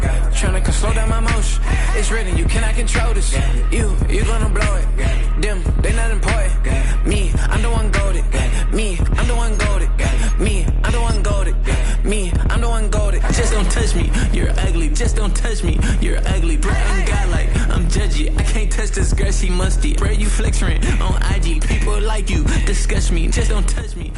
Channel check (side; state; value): both; identical; correlation 1.00